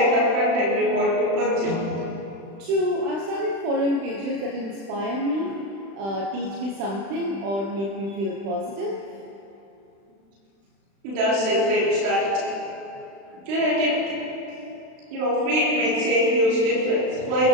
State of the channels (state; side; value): late; left; 36 ms